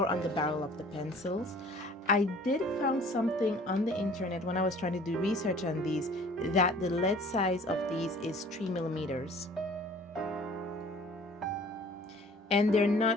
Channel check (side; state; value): both; normal; correlation 0.50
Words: on the barrel of the pencils. I did found something on the internet when I was trying to do research on these that the lead size of these is 3 millimeters. And they're not